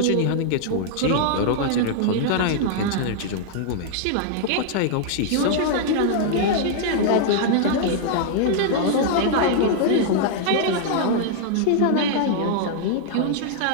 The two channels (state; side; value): different; both; correlation -0.01